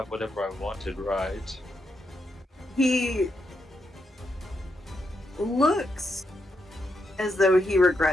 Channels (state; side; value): normal; both; correlation 0.82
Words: whatever I wanted, right? He looks as though he